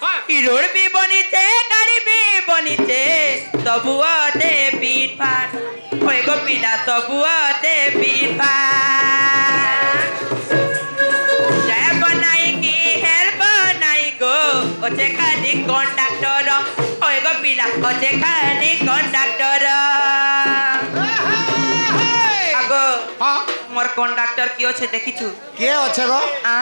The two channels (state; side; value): inverted; both; correlation -1.00